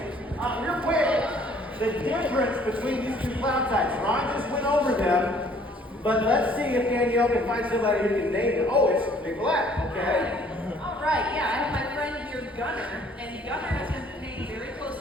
Real quick, the difference between these two cloud types. Ron just went over them, but let's see if Danielle can find somebody who can name them. Oh, it's Big Black, okay? All right, yeah, I have my friend here, Gunner, and Gunner has been paying very close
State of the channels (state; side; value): normal; both; correlation 0.59